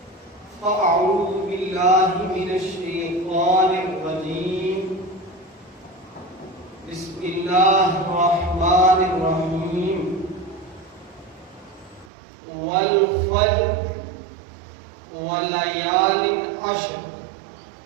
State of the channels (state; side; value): drops out; left; at 12.1 s